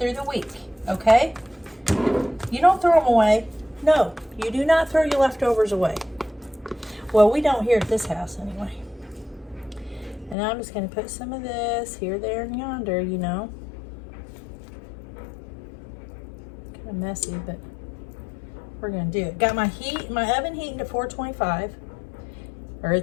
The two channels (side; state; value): right; drops out; at 10.4 s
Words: the week, okay? You don't throw them away. No, you do not throw your leftovers away. Well, we don't here at this house anyway. And I'm just going to put some of this here, there, and yonder, you know. Kind of messy, but we're going to do it. Got my oven heating to 425. Or